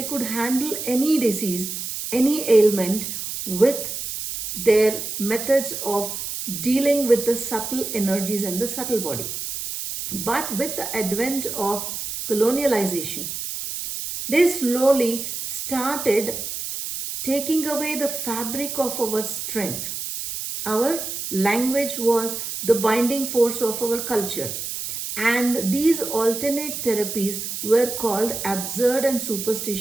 could handle any disease, any ailment with their methods of dealing with the subtle energies and the subtle body. But with the advent of colonialization, they slowly started taking away the fabric of our strength. Our language was the binding force of our culture. And these alternate therapies were called absurd and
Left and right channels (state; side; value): noise; right; hiss, 5 dB below the sound